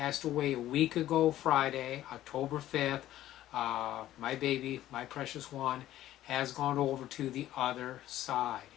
away a week ago, Friday, October 5th. My baby, my precious one, has gone over to the other side.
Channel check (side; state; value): right; quieter; 13.6 dB